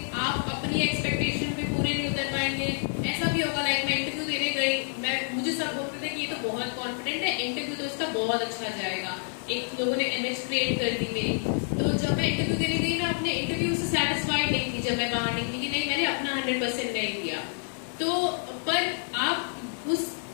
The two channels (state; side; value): silent; right; 59 dB below the other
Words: आप अपनी एक्सपेक्टेशन पे पूरे नहीं उतर पाएंगे। ऐसा भी होगा, लाइक मैं इंटरव्यू देने गई, मुझे सब बोलते थे कि ये तो बहुत कॉन्फिडेंट है, इंटरव्यू तो इसका बहुत अच्छा जाएगा। एक लोगों ने इमेज क्रिएट कर दी मेरी। तो जब मैं इंटरव्यू देने गई, मैं अपने इंटरव्यू से सेटिस्फाइड नहीं थी। जब मैं बाहर निकली कि नहीं, मैंने अपना 100% नहीं दिया। तो पर आप उस